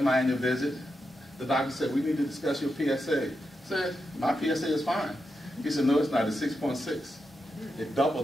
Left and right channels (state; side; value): normal; both; correlation 0.87